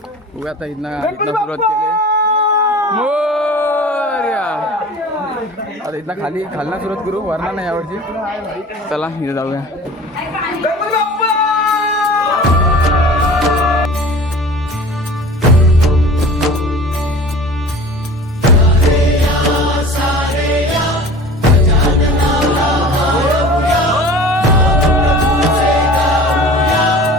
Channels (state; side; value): normal; both; correlation 0.40